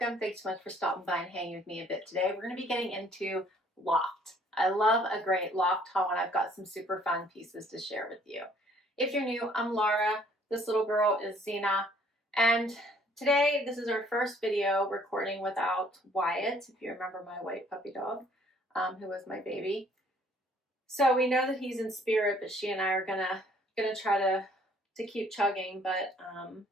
Thanks so much for stopping by and hanging with me a bit today. We're going to be getting into Loft. I love a great Loft haul, and I've got some super fun pieces to share with you. If you're new, I'm Laura. This little girl is Zena, and today this is our first video recording without Wyatt, if you remember my white puppy dog, who was my baby. So we know that he's in spirit, but she and I are gonna try to keep chugging, but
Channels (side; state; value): both; normal; correlation 0.60